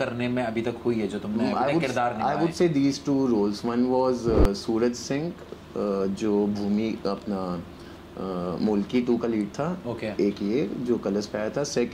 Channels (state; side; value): identical; both; correlation 1.00